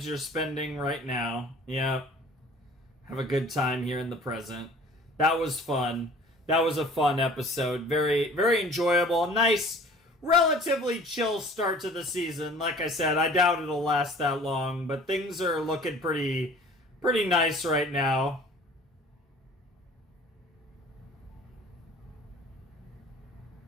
you're spending right now. Yeah. Have a good time here in the present. That was fun. That was a fun episode. Very, very enjoyable. Nice, relatively chill start to the season. Like I said, I doubt it'll last that long, but things are looking pretty nice right now.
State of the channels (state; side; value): normal; both; correlation 0.48